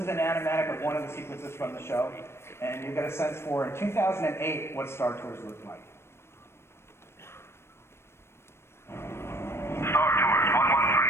is an animatic of one of the sequences from the show, and you get a sense for, in 2008, what Star Tours looked like.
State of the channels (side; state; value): right; late; 0.12 ms